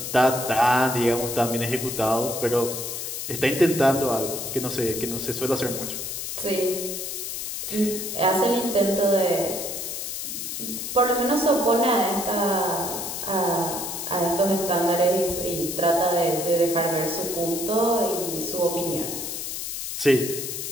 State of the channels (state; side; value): noise; left; hiss, 5 dB below the sound